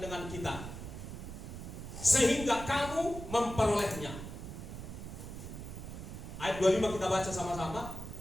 kita, sehingga kamu memperolehnya. Ayat 25 kita baca sama-sama.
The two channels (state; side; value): noise; right; rumble, 9 dB below the sound